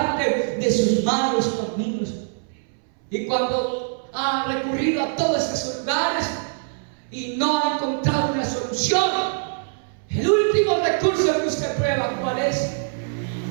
de sus malos caminos. Y cuando ha recurrido a todos esos lugares y no ha encontrado una solución, el último recurso que usted prueba, ¿cuál es?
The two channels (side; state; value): left; silent; 63 dB below the other